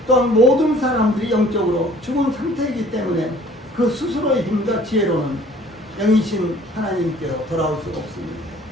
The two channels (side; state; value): both; normal; correlation 0.53